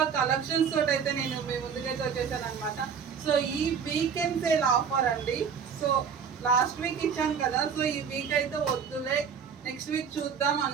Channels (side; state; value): left; quieter; 6.8 dB